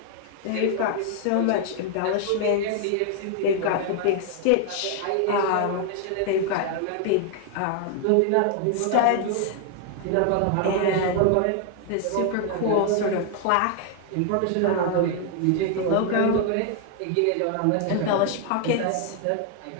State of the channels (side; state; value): both; different; correlation 0.00